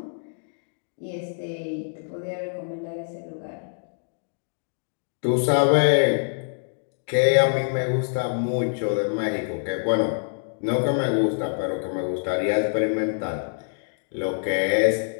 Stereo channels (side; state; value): right; silent; digital silence